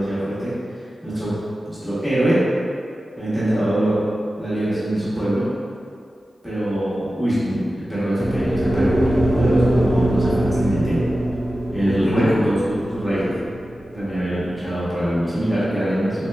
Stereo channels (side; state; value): both; normal; correlation 0.94